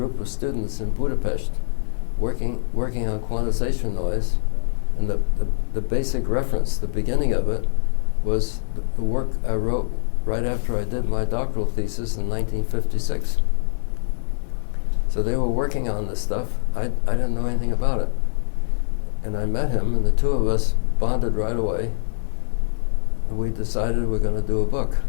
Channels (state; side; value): silent; right; digital silence